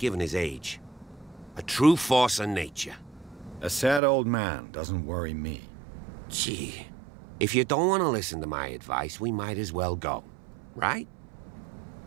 his age. A true force of nature. A sad old man doesn't worry me. Gee, if you don't want to listen to my advice, we might as well go. Right?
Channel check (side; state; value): left; drops out; at 4.0 s